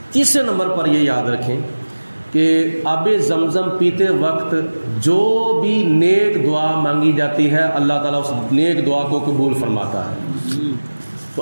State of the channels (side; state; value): both; inverted; correlation -1.00